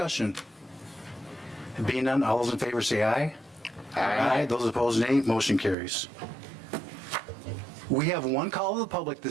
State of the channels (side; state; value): left; drops out; at 5.8 s